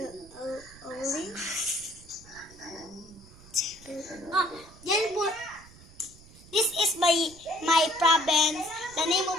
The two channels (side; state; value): right; noise; rumble, 21 dB below the sound